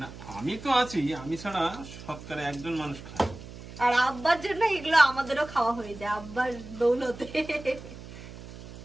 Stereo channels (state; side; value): noise; right; hum, 15 dB below the sound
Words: আমি তো আছি, আমি ছাড়া শতকরা 1জন মানুষ খায়। আর আব্বার জন্য এগুলো আমাদেরও খাওয়া হয়ে যায়, আব্বার দৌলতে।